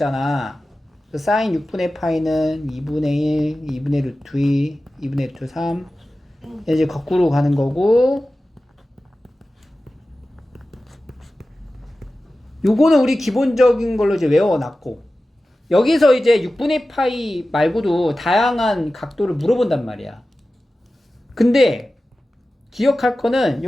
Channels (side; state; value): both; normal; correlation 0.95